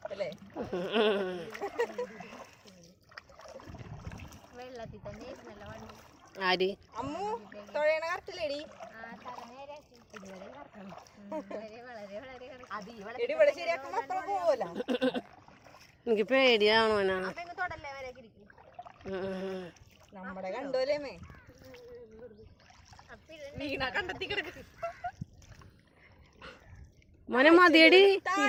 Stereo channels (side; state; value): both; identical; correlation 1.00